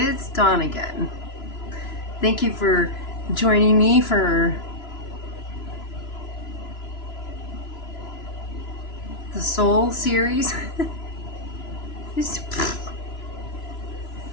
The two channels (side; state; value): right; late; 3.0 ms